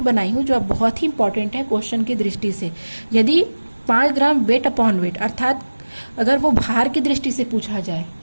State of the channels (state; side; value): inverted; both; correlation -1.00